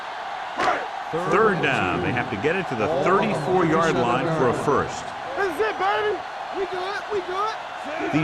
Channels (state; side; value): identical; both; correlation 1.00